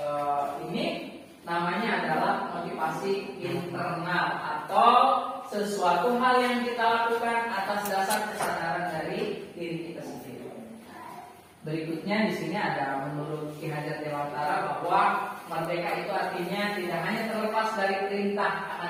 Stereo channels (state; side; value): identical; both; correlation 1.00